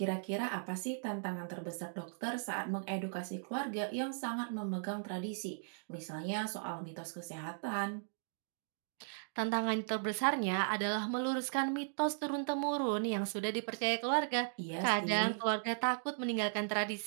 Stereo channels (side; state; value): left; silent; digital silence